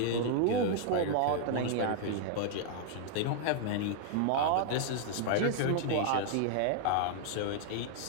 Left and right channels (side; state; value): both; different; correlation -0.01